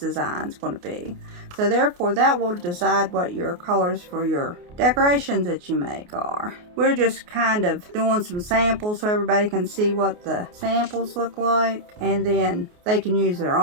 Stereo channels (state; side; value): late; left; 28 ms